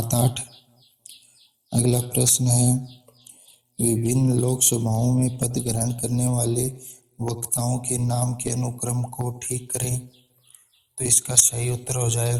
अगला प्रश्न है विभिन्न लोकसभाओं में पद ग्रहण करने वाले वक्ताओं के नाम के अनुक्रम को ठीक करें। तो इसका सही उत्तर हो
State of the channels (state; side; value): identical; both; correlation 1.00